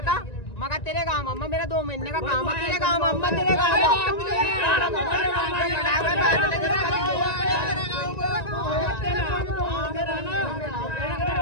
था मगर तेरे काम अम्मा मेरा 2 महीने का काम है, तेरे काम अम्मा तेरे काम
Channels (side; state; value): right; late; 1.9 ms